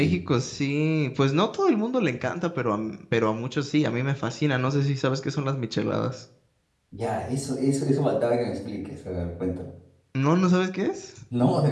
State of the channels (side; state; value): both; identical; correlation 1.00